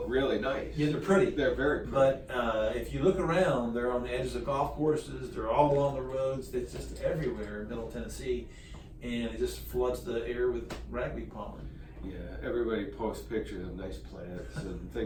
really nice. Yeah, they're pretty. They're very pretty. But if you look around, they're on the edges of golf courses. They're all along the roads. It's just everywhere in Middle Tennessee, and it just floods the air with ragweed pollen. Yeah, everybody posts pictures of nice plants and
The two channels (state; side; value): identical; both; correlation 1.00